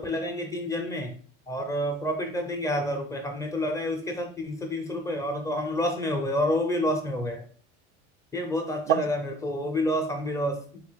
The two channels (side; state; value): both; normal; correlation 0.52